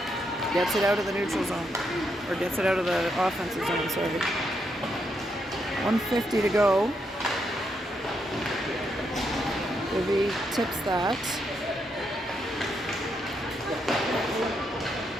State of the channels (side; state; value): both; normal; correlation 0.79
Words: gets it out of the neutral zone. Or gets it out of the offensive zone, sorry. 150 to go. Ivy tips that.